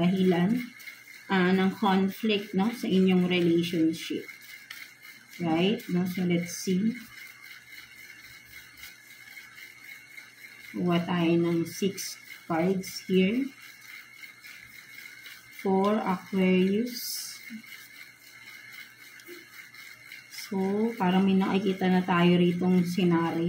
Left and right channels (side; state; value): both; identical; correlation 1.00